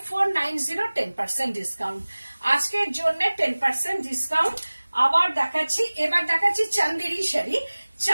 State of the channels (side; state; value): both; inverted; correlation -1.00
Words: 10% ডিসকাউন্ট। আজকের জন্য 10% ডিসকাউন্ট। আবার দেখাচ্ছি, এবার দেখাচ্ছি চান্দেরি শাড়ি,